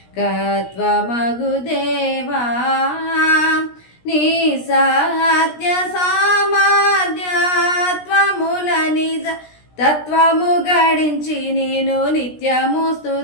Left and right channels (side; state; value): right; late; 17 ms